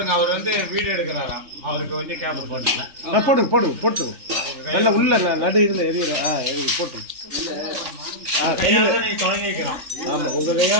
அவர் வந்து வீடியோ எடுக்கிறாராம். அவருக்கு கொஞ்சம் கேப் போடுங்க. போட்டுங்க நல்ல உள்ள நடு இதுல எரியல. எரிய போட்டுங்க. கையால நீ தொடங்கி வைக்கிறோம். ஆமா உங்க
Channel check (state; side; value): late; left; 3.3 ms